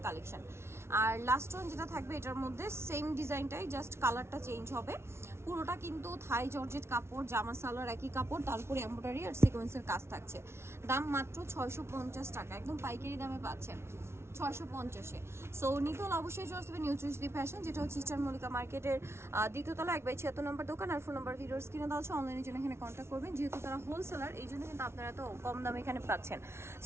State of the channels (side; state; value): left; late; 0.12 ms